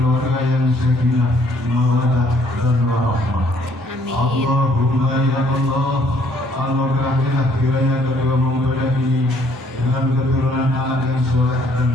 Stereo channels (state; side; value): normal; both; correlation 0.64